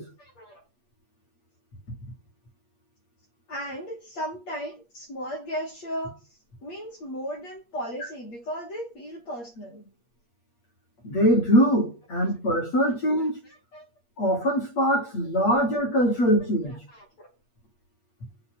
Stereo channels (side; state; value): right; late; 8.5 ms